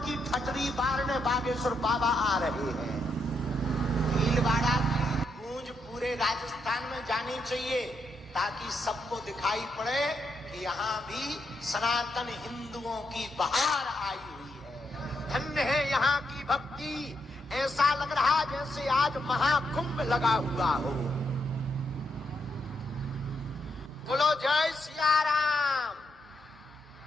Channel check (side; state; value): both; normal; correlation 0.80